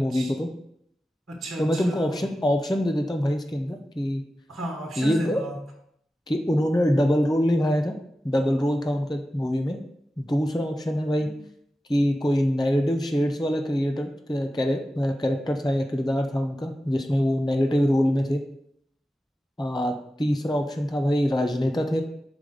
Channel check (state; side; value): normal; both; correlation 0.93